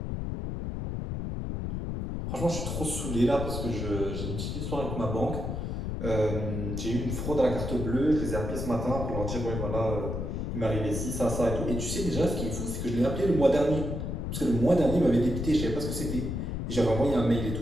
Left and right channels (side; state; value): left; noise; rumble, 3 dB below the sound